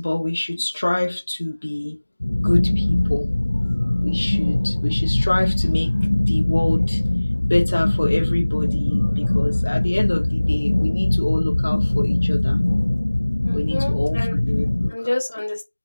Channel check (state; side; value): inverted; both; correlation -1.00